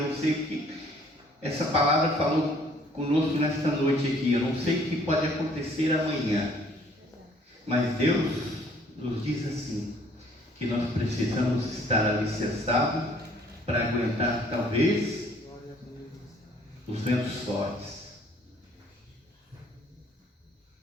sei o que essa palavra falou conosco nesta noite aqui. Eu não sei o que pode acontecer amanhã, mas Deus nos diz assim, que nós precisamos estar alicerçados para aguentar talvez os ventos fortes.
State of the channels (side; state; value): both; normal; correlation 0.59